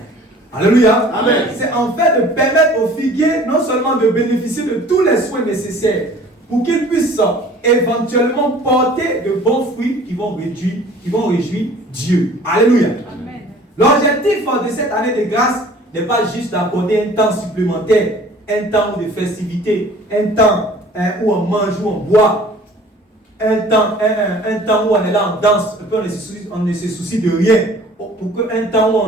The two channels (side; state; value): both; normal; correlation 0.49